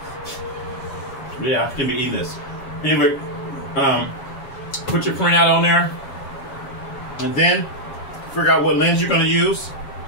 Yeah, I'm gonna be eating this. Anyway, put your printout on there. And then figure out what lens you're gonna use.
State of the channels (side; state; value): right; late; 7.3 ms